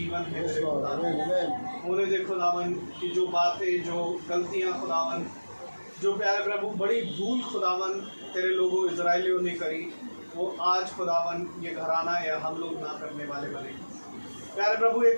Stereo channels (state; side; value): inverted; both; correlation -1.00